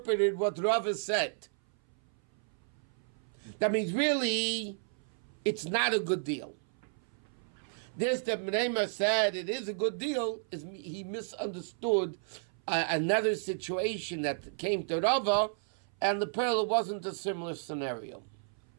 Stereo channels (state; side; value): silent; left; 56 dB below the other